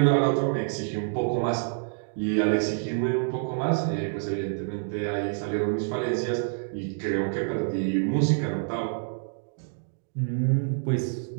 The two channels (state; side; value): silent; left; digital silence